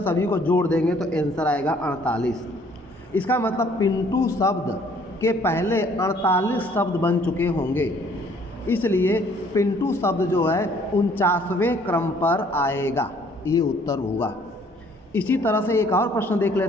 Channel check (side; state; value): both; normal; correlation 0.60